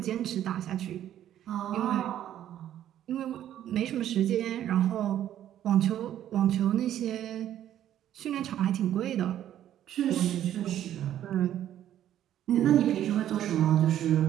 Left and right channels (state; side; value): quieter; left; 11.4 dB